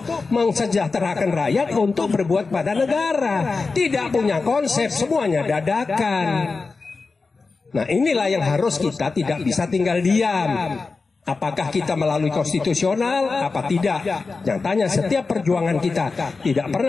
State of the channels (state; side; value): quieter; right; 4.2 dB